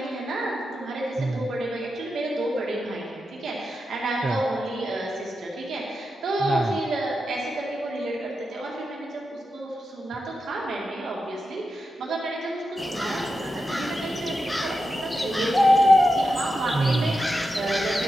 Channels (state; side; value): normal; both; correlation 0.89